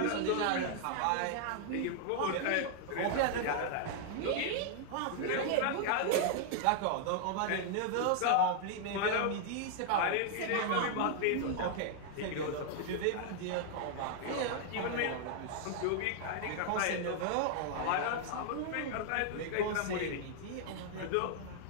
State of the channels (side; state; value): both; different; correlation 0.00